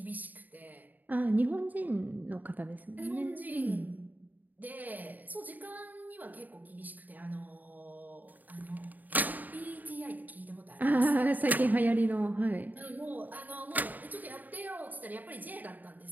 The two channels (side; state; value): left; late; 0.084 ms